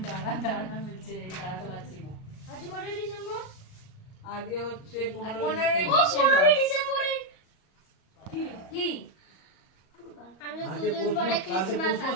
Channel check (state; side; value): late; right; 38 ms